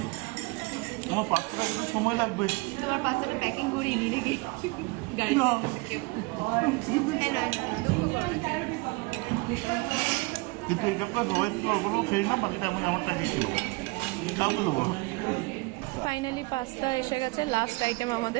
আমার পাঁচটা কিন্তু সময় লাগবে। তোমার পাঁচটা প্যাকিং করিয়ে নি নাকি গাড়ি? কিন্তু এটা সবাই অল্প খেয়ে না, বাকিটা আমি আমারটা খেয়েছিল, কাউকে দেবো। ফাইনালি পাস্তা এসে গেছে, লাস্ট আইটেম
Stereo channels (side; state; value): left; quieter; 26.6 dB